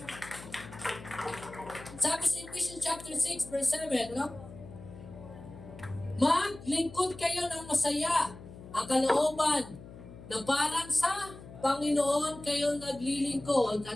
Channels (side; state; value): left; noise; hum, 16 dB below the sound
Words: Sabi sa Ephesians chapter 6 verse 7, no? Maglingkod kayo ng masaya ang kalooban na parang sa Panginoon kayo naglilingkod